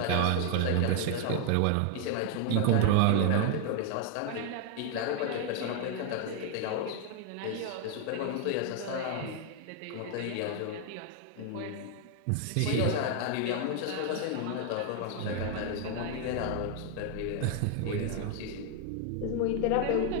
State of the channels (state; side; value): different; both; correlation 0.00